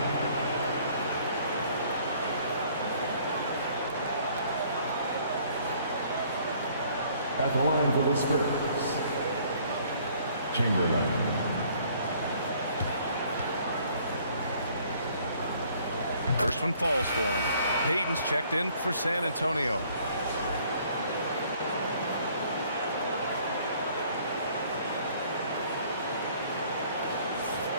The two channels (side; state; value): both; inverted; correlation -0.59